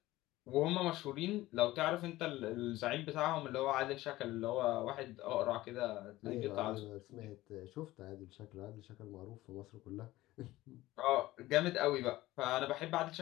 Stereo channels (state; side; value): quieter; right; 17.2 dB